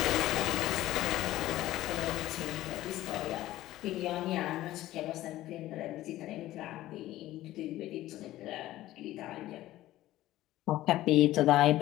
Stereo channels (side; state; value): right; quieter; 15.3 dB